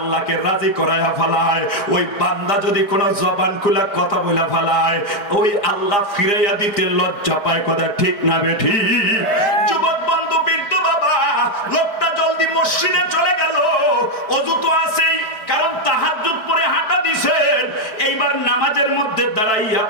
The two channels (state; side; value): late; right; 4.6 ms